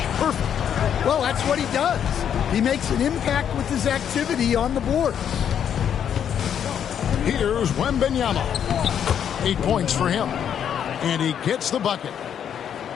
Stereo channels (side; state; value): right; quieter; 8.8 dB